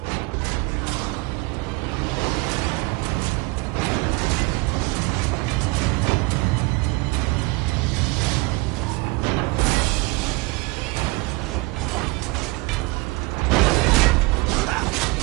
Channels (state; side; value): quieter; left; 24.8 dB